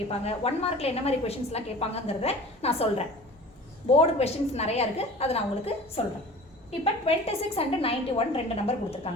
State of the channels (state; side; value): normal; both; correlation 0.41